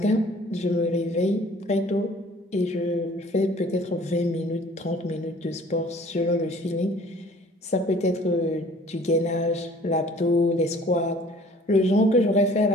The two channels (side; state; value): both; normal; correlation 0.52